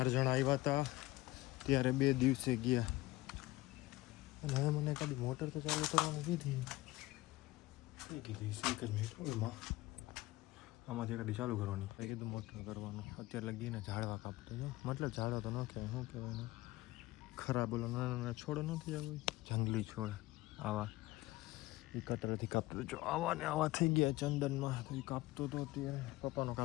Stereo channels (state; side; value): quieter; right; 18.8 dB